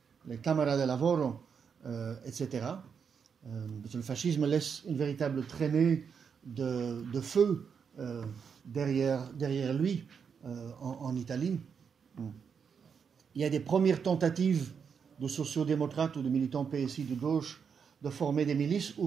Cámaras de Lavoro, etc. Parce que le fascisme laisse une véritable traînée de feu derrière lui en Italie. Il y a des premières tentatives de sociodémocrates ou de militants PSI de gauche de former des milices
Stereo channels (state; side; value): quieter; left; 6.6 dB